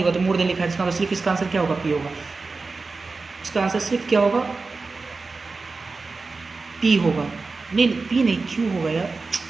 होगा, तो मोर देन लिखा है, इसका मतलब सिर्फ इसका आंसर क्या होगा, P होगा। इसका आंसर सिर्फ क्या होगा, पी होगा, नहीं पी नहीं, क्यू होगा यार,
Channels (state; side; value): quieter; left; 4.0 dB